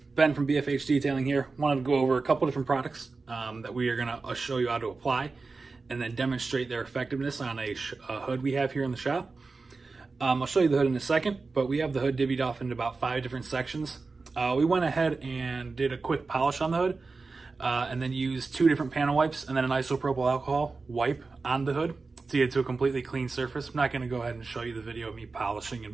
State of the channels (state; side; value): quieter; left; 4.0 dB